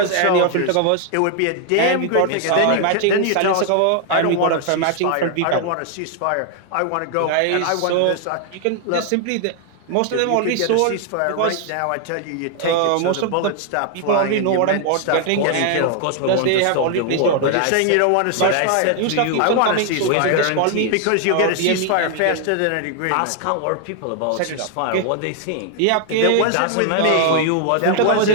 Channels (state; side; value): different; both; correlation 0.00